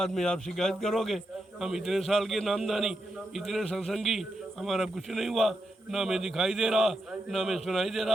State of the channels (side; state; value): both; normal; correlation 0.85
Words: में आप शिकायत करोगे हम इतने साल के नामदानी, इतने सत्संगी, हमारा कुछ नहीं हुआ, ना हमें दिखाई दे रहा, ना हमें सुनाई दे